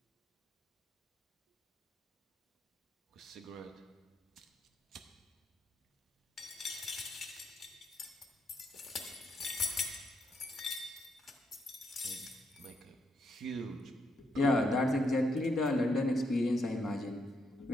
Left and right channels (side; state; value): both; normal; correlation 0.78